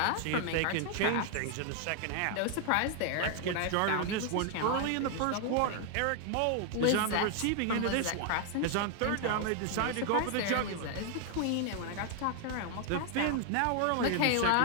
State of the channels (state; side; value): different; both; correlation 0.00